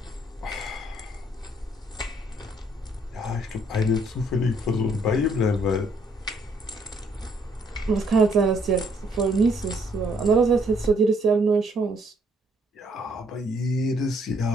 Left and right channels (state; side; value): normal; both; correlation 0.67